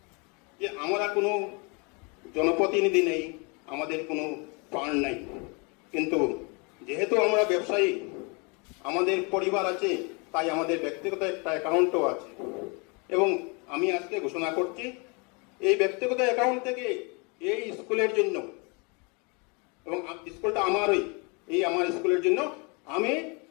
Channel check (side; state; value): right; quieter; 31.6 dB